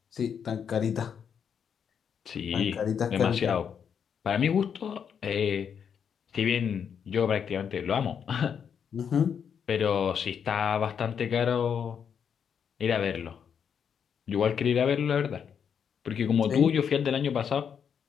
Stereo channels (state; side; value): quieter; right; 7.5 dB